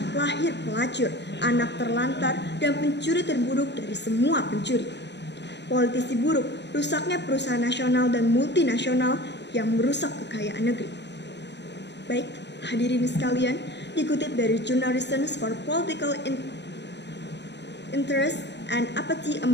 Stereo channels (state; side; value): late; right; 0.50 ms